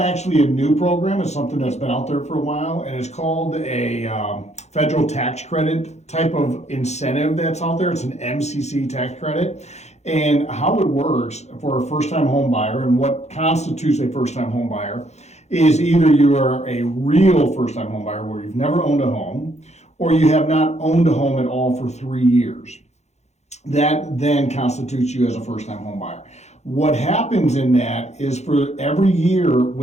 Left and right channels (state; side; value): late; right; 0.32 ms